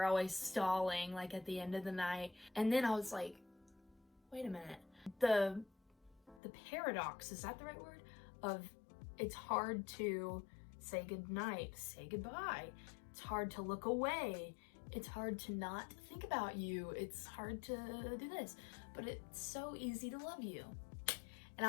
always stalling like at the end of the night. And then I was like, wait a minute, the paradox, is that the right word, of it's hard to say goodnight, say goodbye, it's hard to look away, it's hard to not think about you, it's hard to do this, but it's so easy to love you. And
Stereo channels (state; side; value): drops out; right; at 6.4 s